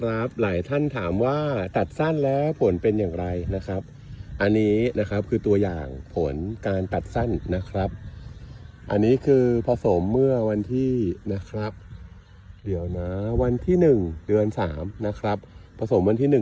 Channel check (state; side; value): identical; both; correlation 1.00